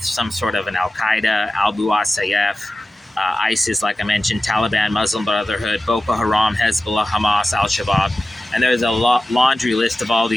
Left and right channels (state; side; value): normal; both; correlation 0.94